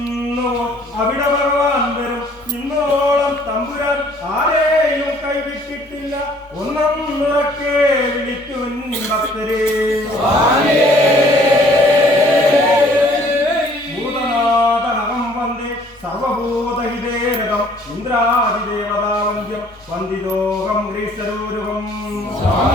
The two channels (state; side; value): normal; both; correlation 0.58